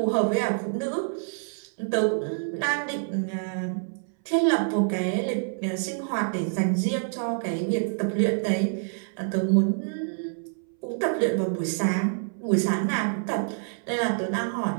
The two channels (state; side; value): silent; left; 60 dB below the other